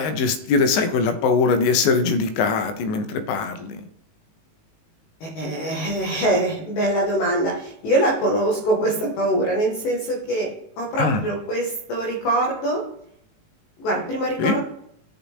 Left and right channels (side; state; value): right; late; 19 ms